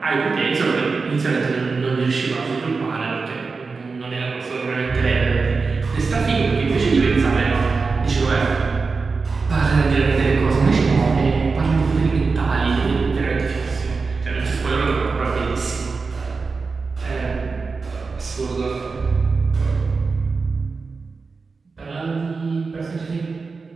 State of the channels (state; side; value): quieter; left; 4.4 dB